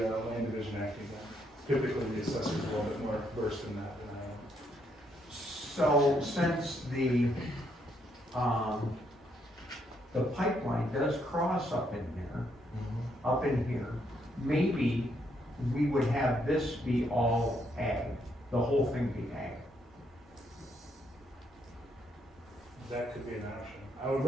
land division act again. Typically, the assessor's a little bit more versed in that than I am. so since the pipeline does cross up in here, maybe we would have this be all ag, the whole thing be ag. That could be an option. I would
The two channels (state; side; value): normal; both; correlation 0.74